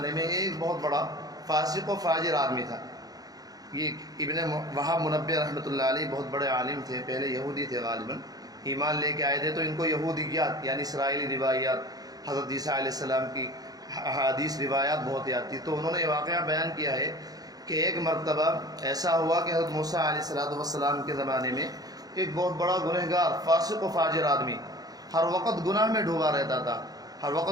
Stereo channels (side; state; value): left; late; 0.18 ms